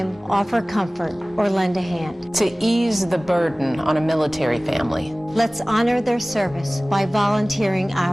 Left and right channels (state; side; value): normal; both; correlation 0.98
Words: offer comfort, or lend a hand. To ease the burden on a military family. Let's honor their service by volunteering